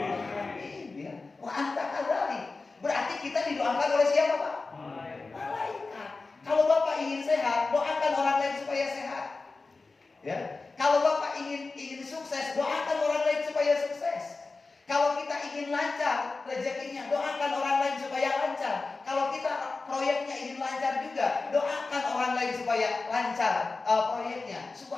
Ya. Wa anta kadzalik. Berarti kita didoakan oleh siapa Pak? Malaikat. Kalau Bapak ingin sehat, doakan orang lain supaya sehat. Ya. Kalau Bapak ingin sukses, doakan orang lain supaya sukses. Kalau kita ingin lancar rezekinya, doakan orang lain supaya lancar. Kalau kita proyeknya ingin lancar juga, doakan orang lain supaya lancar proyeknya.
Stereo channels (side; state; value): right; quieter; 3.8 dB